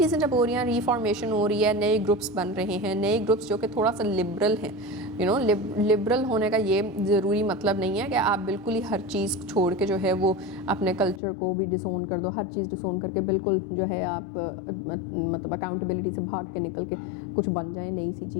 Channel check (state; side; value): drops out; right; at 11.2 s